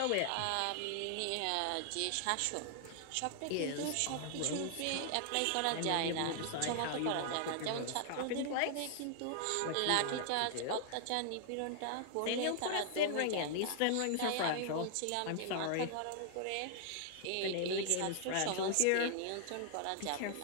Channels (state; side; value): different; both; correlation 0.00